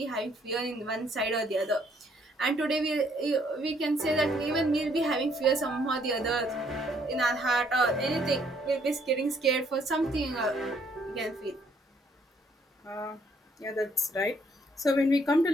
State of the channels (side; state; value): both; normal; correlation 0.66